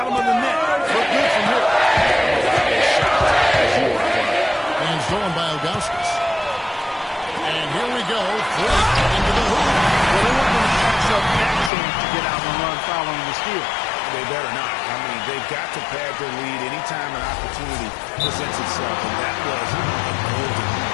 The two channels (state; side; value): drops out; right; at 11.7 s